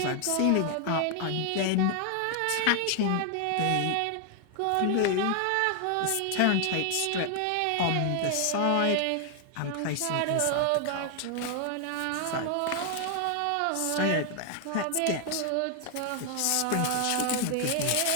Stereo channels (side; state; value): both; different; correlation 0.00